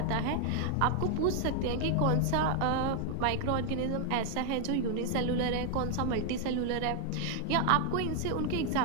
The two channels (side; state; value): both; different; correlation 0.00